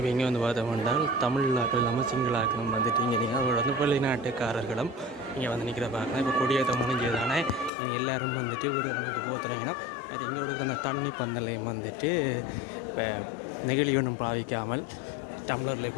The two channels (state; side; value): drops out; right; at 7.7 s